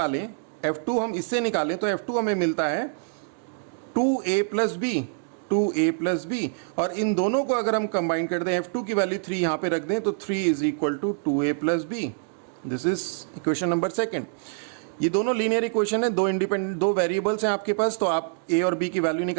f2 हम इससे निकालें तो f2 हमें मिलता है 2a plus b, 2a plus b, और इन दोनों को अगर हम कंबाइन कर दें, f2 की वैल्यू 3 यहाँ पे रख दें तो 3 is equal to 2a plus b, this is equation number 2। ये दोनों लीनियर इक्वेशन है, दो वेरिएबल्स हैं आपके पास, तो आप a और b की वैल्यू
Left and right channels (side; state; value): left; silent; digital silence